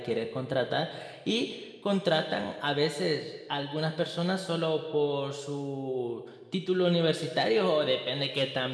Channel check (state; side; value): identical; both; correlation 1.00